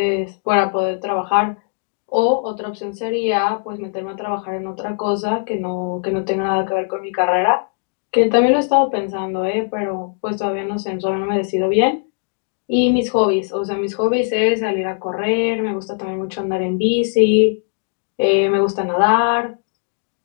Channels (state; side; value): silent; right; digital silence